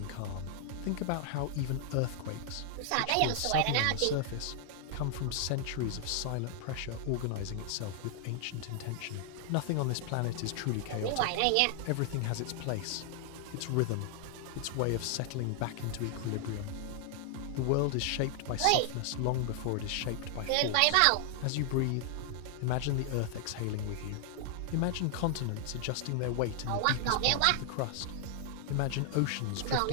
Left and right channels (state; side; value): different; both; correlation 0.00